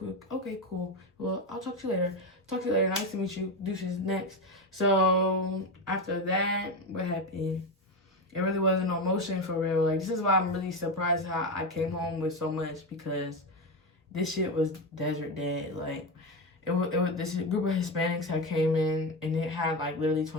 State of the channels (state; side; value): normal; both; correlation 0.16